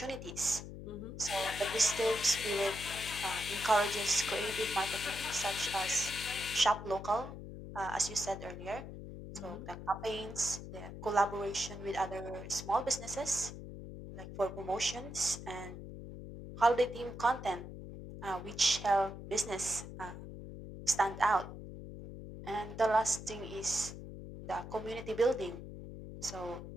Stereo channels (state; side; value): noise; left; hum, 11 dB below the sound